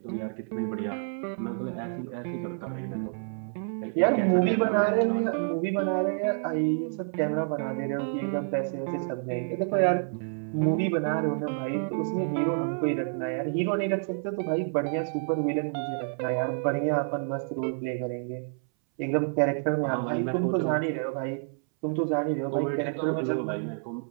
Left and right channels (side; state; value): left; silent; 59 dB below the other